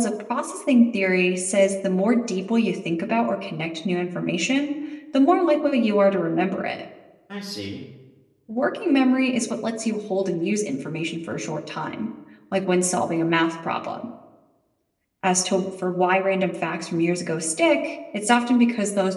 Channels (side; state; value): both; identical; correlation 1.00